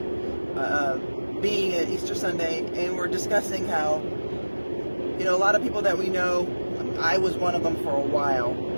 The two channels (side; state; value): both; inverted; correlation -1.00